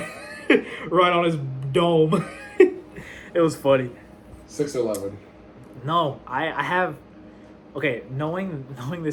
right on his dome. It was funny. 6-11. No, I have. Okay, knowing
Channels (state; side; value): identical; both; correlation 1.00